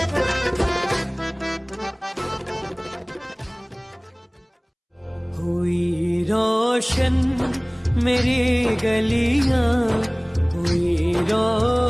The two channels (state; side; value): identical; both; correlation 1.00